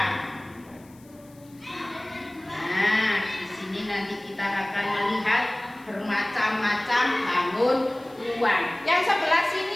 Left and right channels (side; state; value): left; noise; hiss, 28 dB below the sound